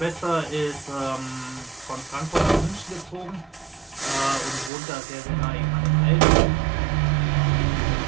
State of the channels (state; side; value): drops out; left; at 4.7 s